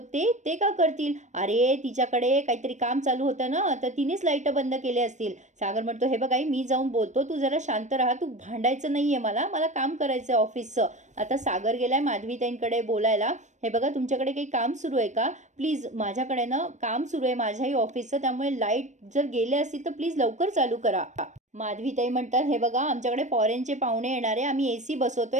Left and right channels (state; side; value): late; left; 0.35 ms